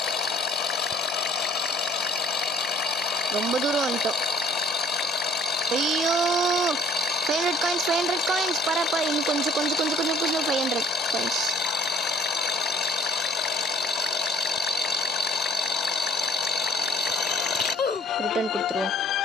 ரொம்ப தூரம் வந்துட்டோம். ஐயோ 500 காயின்ஸ் பரப்பா. இன்னும் கொஞ்சம் 500 காயின்ஸ். ரிட்டர்ன் கொடுத்துருவோம்.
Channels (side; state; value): both; normal; correlation 0.57